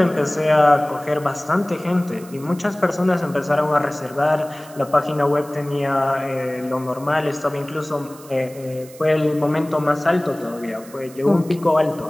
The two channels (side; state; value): right; noise; hiss, 21 dB below the sound